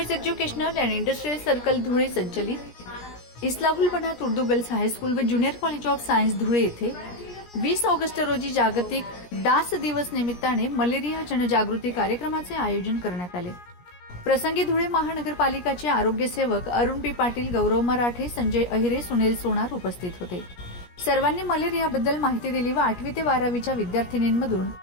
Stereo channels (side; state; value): right; late; 17 ms